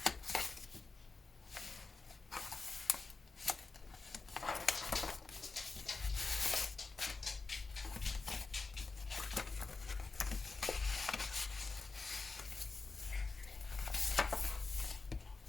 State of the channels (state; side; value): quieter; right; 4.0 dB